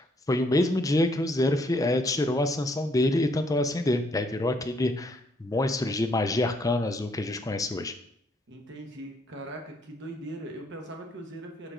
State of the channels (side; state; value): both; normal; correlation 0.69